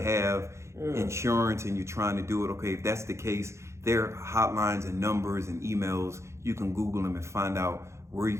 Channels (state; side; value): late; left; 0.14 ms